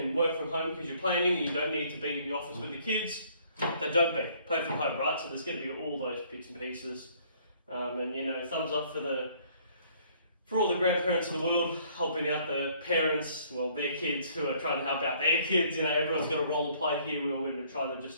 work from home because you're planning and you don't need to be in the office with the kids, then don't be. Play from home, right? So there's going to be all those bits and pieces. And you know, thumbs up for all the grandparents in the world helping out the parents, well, their kids who are trying to help out their kids. You know, everyone's got a role to play here. We're all going to try to just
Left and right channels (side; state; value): both; inverted; correlation -0.61